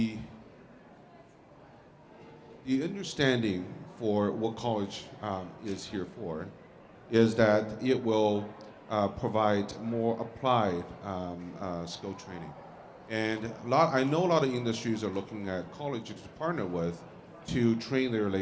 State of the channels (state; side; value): identical; both; correlation 1.00